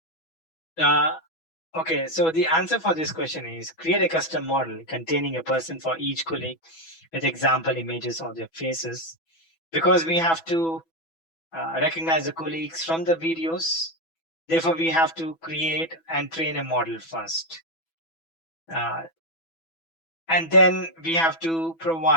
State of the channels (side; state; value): right; late; 6.1 ms